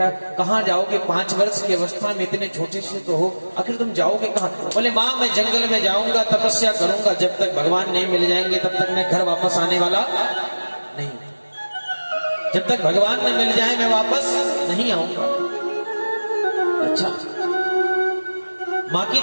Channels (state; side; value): inverted; both; correlation -1.00